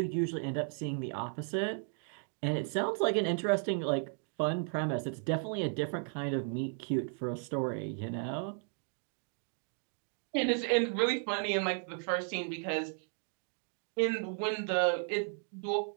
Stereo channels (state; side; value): silent; left; 55 dB below the other